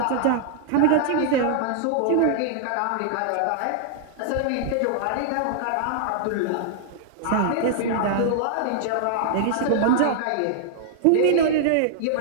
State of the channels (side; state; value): both; different; correlation -0.01